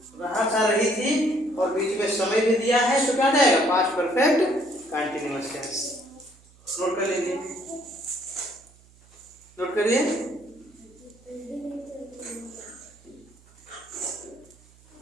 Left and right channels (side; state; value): right; noise; hum, 27 dB below the sound